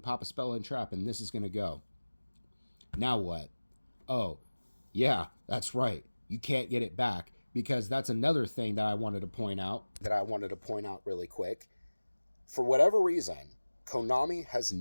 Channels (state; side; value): inverted; both; correlation -1.00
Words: a spell and trap and this is going to go. Now what? Oh, yeah, that's right. You can't get it back, because that's another thing that I wanted to point out. Really quick. For whatever reason, Konami has